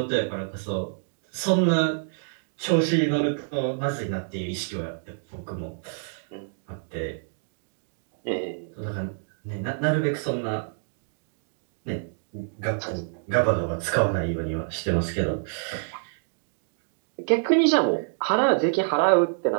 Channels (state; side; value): silent; left; digital silence